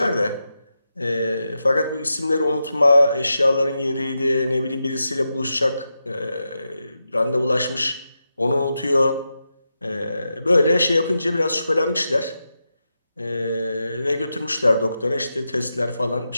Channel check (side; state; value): both; inverted; correlation -0.89